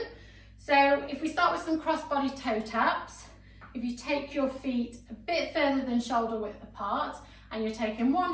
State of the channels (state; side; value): identical; both; correlation 1.00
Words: So if we start with some cross-body toe taps, if you take your feet a bit further than shoulder width apart and you're taking